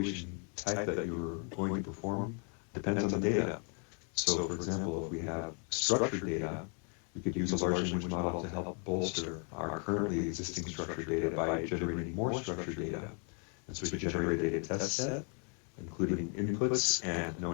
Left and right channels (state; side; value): quieter; right; 40.0 dB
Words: type that you're going to perform depends on the data. So for example, if we have structured data, we could use a large language model to help bolster our currently existing structured data by generating more structured data. And so we could generate a data test set, including inputs and